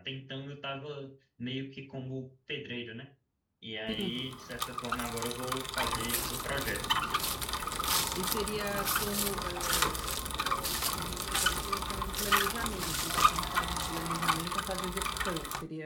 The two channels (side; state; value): both; identical; correlation 1.00